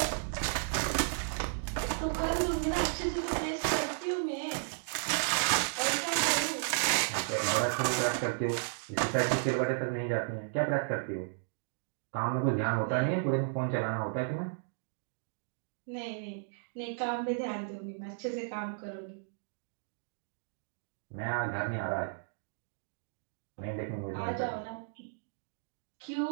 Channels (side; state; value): left; silent; digital silence